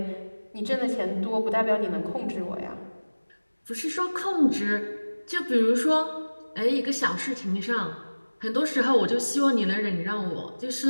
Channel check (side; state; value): both; inverted; correlation -1.00